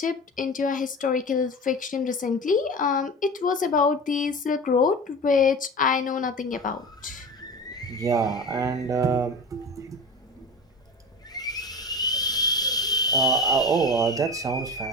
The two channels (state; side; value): normal; both; correlation 0.31